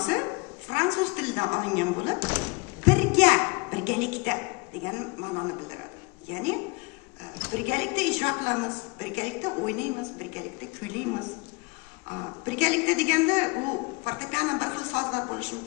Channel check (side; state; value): right; quieter; 28.1 dB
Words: fransuz tilidan olingan bo'lib, birgalikda degan ma'noni bildiradi. Ya'ni birgalikda ijro qilamiz, birgalikda o'ynaymiz, birgalikda kuylaymiz. Birgalikda deganda u fortepiano bir xil sozlar bo'lishi